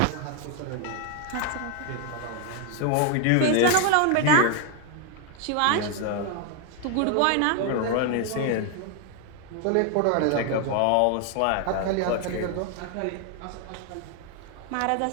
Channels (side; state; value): both; different; correlation 0.01